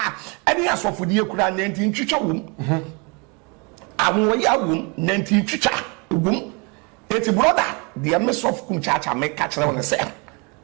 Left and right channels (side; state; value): left; quieter; 31.5 dB